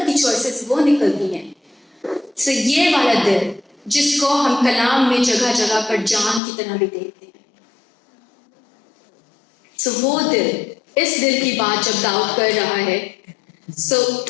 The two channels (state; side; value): drops out; right; at 6.4 s